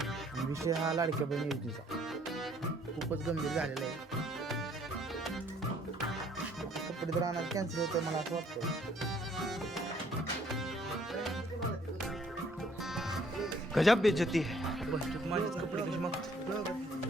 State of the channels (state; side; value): normal; both; correlation 0.62